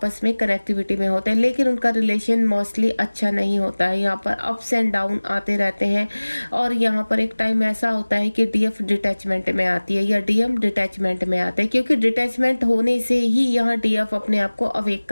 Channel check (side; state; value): both; inverted; correlation -1.00